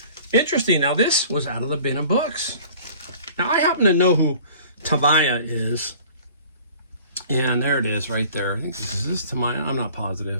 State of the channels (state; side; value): inverted; both; correlation -0.48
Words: Interesting. Now, this was out of the Bin of Books. Now, I happen to know who Tamaya is, and there it is right there. I think is this Tamaya? I'm not